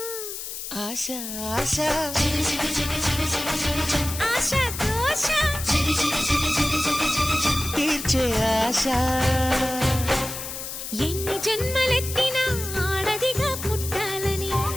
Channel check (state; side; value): noise; left; hiss, 7 dB below the sound